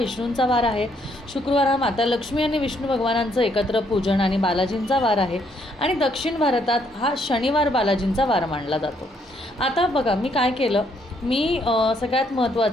वार आहे, शुक्रवार हा माता लक्ष्मी आणि विष्णू भगवानांचं एकत्र पूजन आणि बालाजींचा वार आहे, आणि दक्षिण भारतात हा शनिवार बालाजींचा वार मानला जातो. आता बघा मी काय केलं, मी सगळ्यात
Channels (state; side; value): normal; both; correlation 0.71